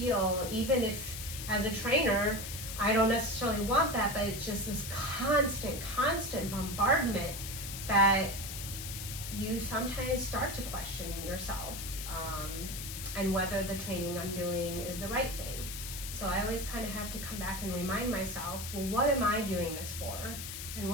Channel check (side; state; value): left; noise; hiss, 7 dB below the sound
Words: even if as a trainer, I don't necessarily want that, but it's just this constant bombardment that you sometimes start to question yourself, and whether the training I'm doing is the right thing. So I always kind of have to come back and remind myself, well, what am I doing this for? And